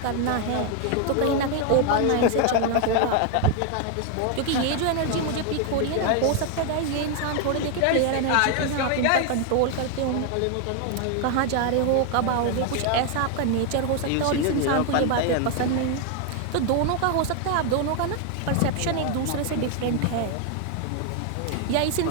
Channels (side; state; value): both; different; correlation 0.01